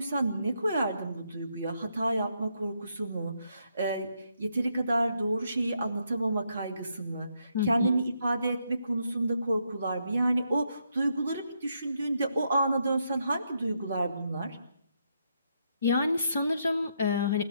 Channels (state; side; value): inverted; both; correlation -0.78